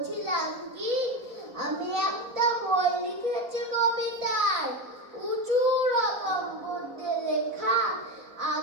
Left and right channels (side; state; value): left; late; 4.2 ms